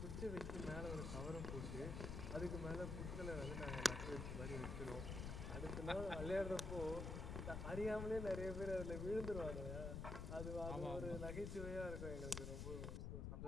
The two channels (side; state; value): left; noise; rumble, 3 dB below the sound